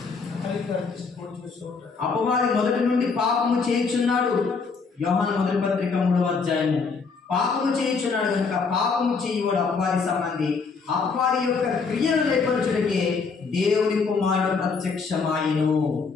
అపవాది మొదటి నుండి పాపము చేయుచున్నాడు. యోహాను మొదటి పత్రిక 3వ అధ్యాయము. పాపము చేయుచున్నాడు కనుక పాపము చేయువాడు అపవాది సంబంధి. అపవాది యొక్క క్రియలు లేపరచుటకే దేవుని కుమారుడు ప్రత్యక్షమాయను.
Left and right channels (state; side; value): quieter; right; 4.9 dB